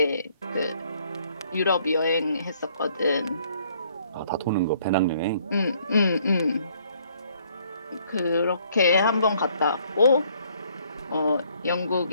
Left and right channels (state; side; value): inverted; both; correlation -0.65